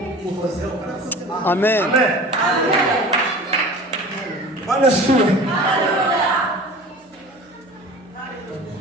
ukozeho. Amen. Amen. Bwana siwe.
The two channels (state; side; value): normal; both; correlation 0.39